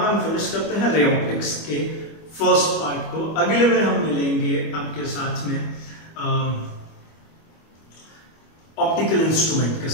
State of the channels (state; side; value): late; right; 25 ms